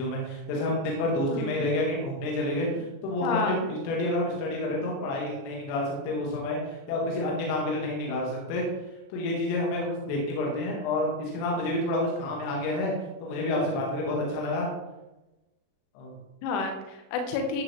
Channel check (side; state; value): right; late; 36 ms